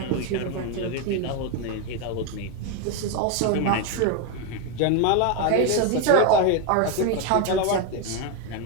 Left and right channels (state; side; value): different; both; correlation 0.02